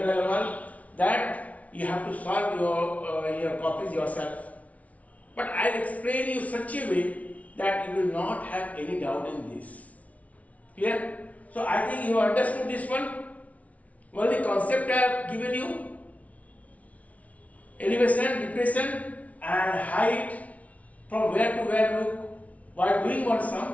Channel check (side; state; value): right; late; 0.068 ms